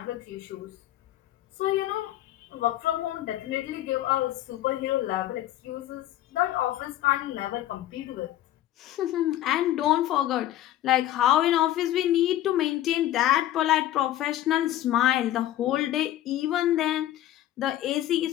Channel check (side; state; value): right; quieter; 13.5 dB